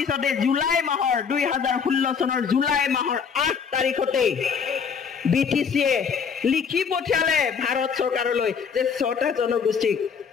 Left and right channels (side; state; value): right; quieter; 6.4 dB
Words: জুলাই মাহৰ 2016 চনৰ জুলাই মাহৰ 8 তাৰিখতে BTCয়ে লিখি পঠিয়ালে ভাৰত চৰকাৰলৈ যে 6টা জনগোষ্ঠীক